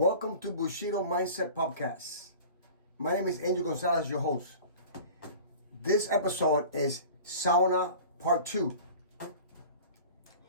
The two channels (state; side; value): inverted; both; correlation -0.41